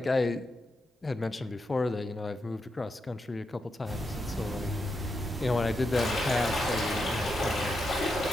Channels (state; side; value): normal; both; correlation 0.85